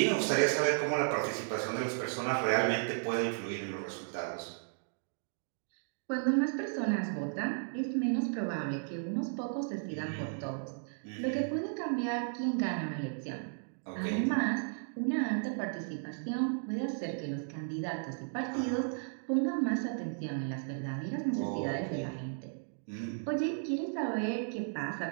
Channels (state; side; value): silent; left; digital silence